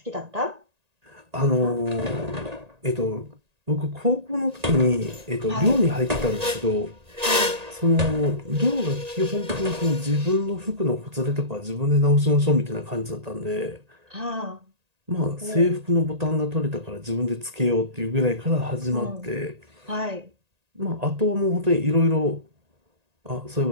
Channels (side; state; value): left; late; 1.8 ms